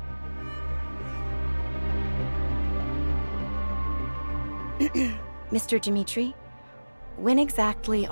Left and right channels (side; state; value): both; inverted; correlation -1.00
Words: Mr. Dimitri, when exactly